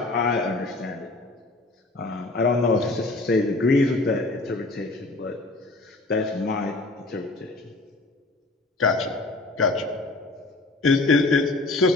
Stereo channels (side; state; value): right; quieter; 3.1 dB